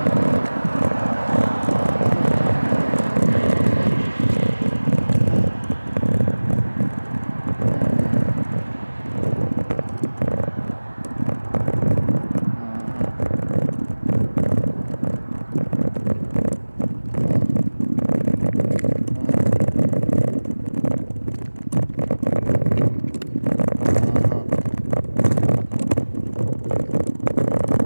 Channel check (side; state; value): both; inverted; correlation -1.00